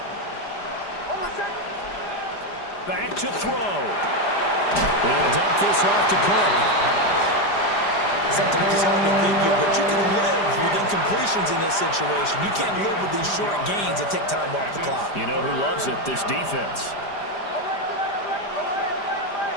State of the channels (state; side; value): late; right; 5.0 ms